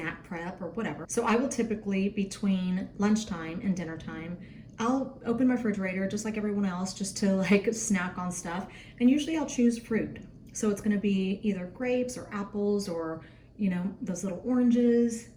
prep or whatever. So I will typically, between lunchtime and dinner time, I'll open my refrigerator just like everyone else, just to like snack on stuff. And usually I'll choose fruit. So it's gonna be either grapes or apples or, you know, those little oranges,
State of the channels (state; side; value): identical; both; correlation 1.00